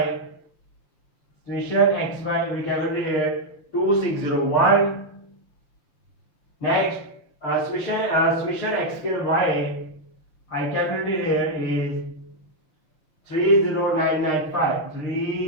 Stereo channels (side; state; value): right; late; 6.4 ms